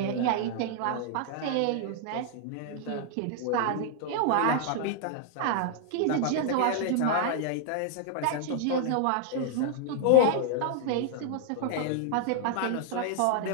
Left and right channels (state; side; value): different; both; correlation -0.01